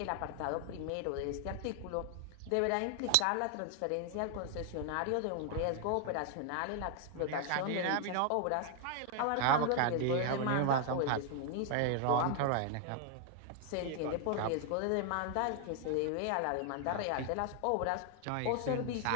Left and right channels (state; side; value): different; both; correlation 0.00